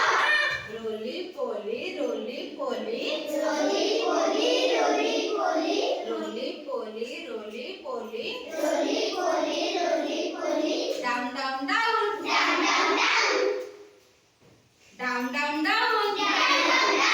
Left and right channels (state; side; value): identical; both; correlation 1.00